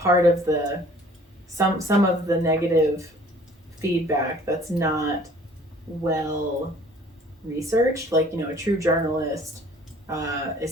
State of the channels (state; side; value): normal; both; correlation 0.53